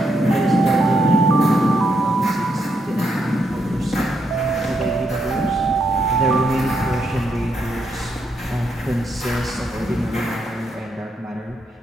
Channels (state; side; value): normal; both; correlation 0.78